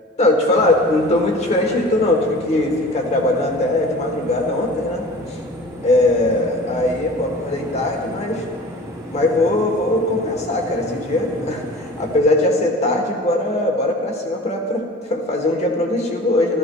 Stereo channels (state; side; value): normal; both; correlation 0.41